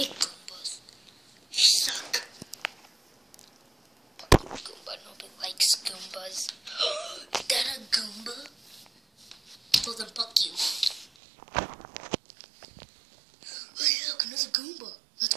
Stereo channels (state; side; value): drops out; left; at 11.1 s